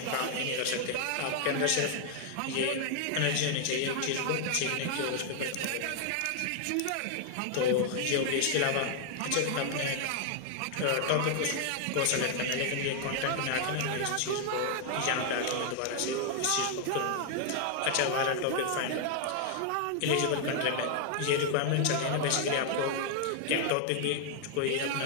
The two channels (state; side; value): different; both; correlation 0.00